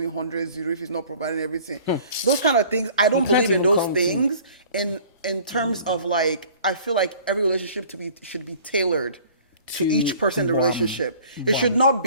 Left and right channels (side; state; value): both; inverted; correlation -0.50